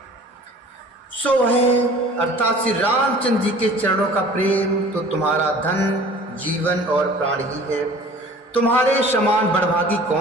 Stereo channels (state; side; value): normal; both; correlation 0.47